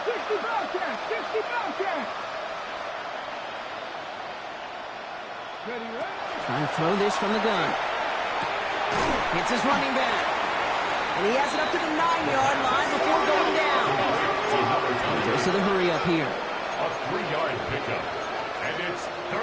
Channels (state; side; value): identical; both; correlation 1.00